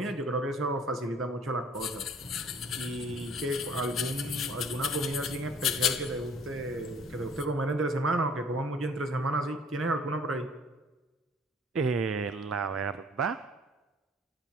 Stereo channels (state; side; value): normal; both; correlation 0.54